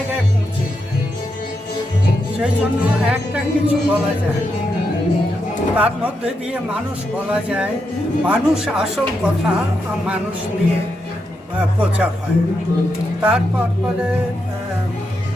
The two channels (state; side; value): normal; both; correlation 0.84